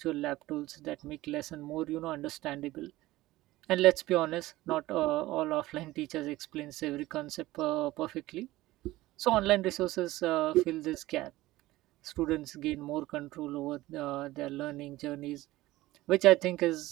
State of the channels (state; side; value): quieter; left; 17.6 dB